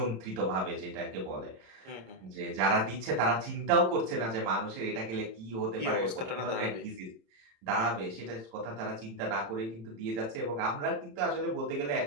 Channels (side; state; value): left; late; 26 ms